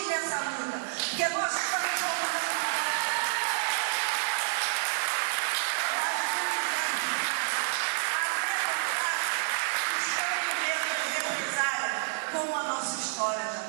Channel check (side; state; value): left; silent; digital silence